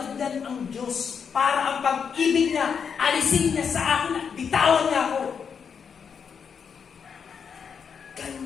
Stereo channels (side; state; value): right; quieter; 6.6 dB